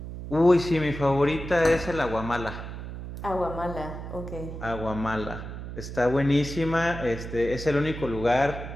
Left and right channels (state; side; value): noise; right; hum, 9 dB below the sound